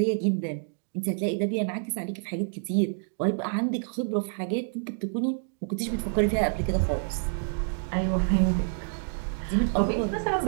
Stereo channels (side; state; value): left; silent; digital silence